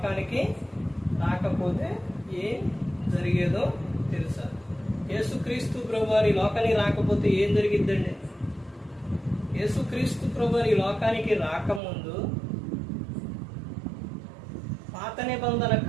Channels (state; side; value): drops out; left; at 11.8 s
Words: రాకపోతే ఏం జరిగేదో తెలుసా? యేసుక్రీస్తు ప్రభువారు ఈ లోకానికి రాకపోతే ఏం జరిగిద్దండి? యేసుక్రీస్తు ప్రభువారు ఈ లోకానికి రాకముందు పాత నిబంధన